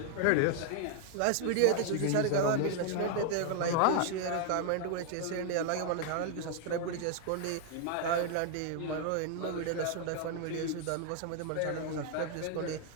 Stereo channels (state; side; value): different; both; correlation 0.00